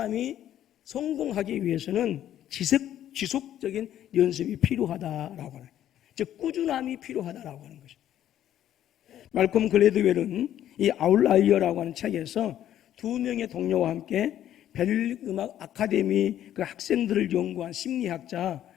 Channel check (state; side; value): quieter; right; 11.5 dB